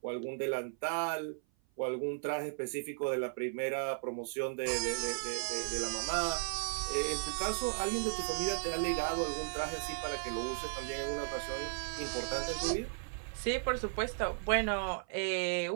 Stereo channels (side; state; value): left; silent; 54 dB below the other